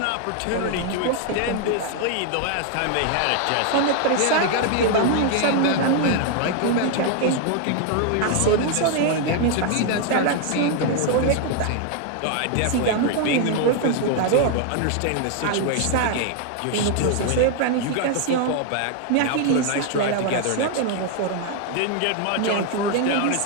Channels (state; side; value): different; both; correlation 0.00